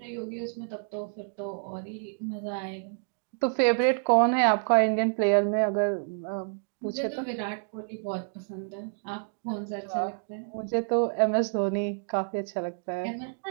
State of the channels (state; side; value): silent; left; digital silence